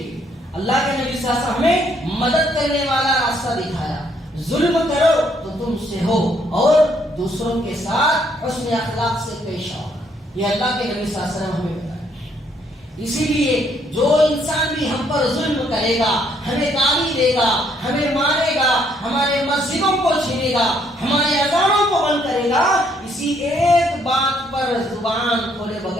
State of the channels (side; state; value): both; normal; correlation 0.69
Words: اللہ کے نبی صلی اللہ علیہ وسلم ہمیں مدد کرنے والا راستہ دکھایا. ظلم کرو تو تم سے ہو اور دوسروں کے ساتھ حسن اخلاق سے پیش آؤ. یہ اللہ کے نبی صلی اللہ علیہ وسلم ہمیں بتایا. اسی لیے جو انسان بھی ہم پر ظلم کرے گا، ہمیں گالی دے گا، ہمیں مارے گا، ہمارے مسجدوں کو چھینے گا، ہمارے اذانوں کو بند کرے گا، اسی ایک بات پر زبان کھولے